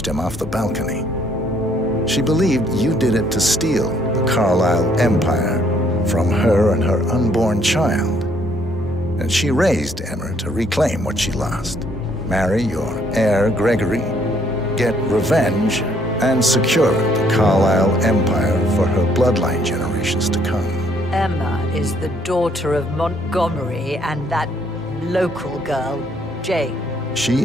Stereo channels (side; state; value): both; normal; correlation 0.66